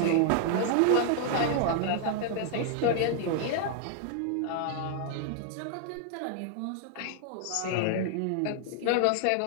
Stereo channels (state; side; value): different; both; correlation 0.00